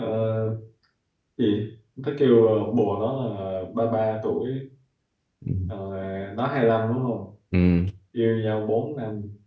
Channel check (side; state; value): both; identical; correlation 1.00